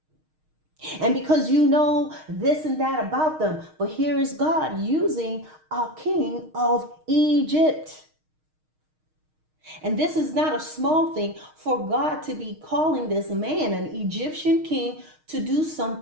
And because you know this and that about them. But here is God using a king of Egypt. And this is not a small thing for God to be calling this man, an Egyptian king, to do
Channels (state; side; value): late; left; 6.4 ms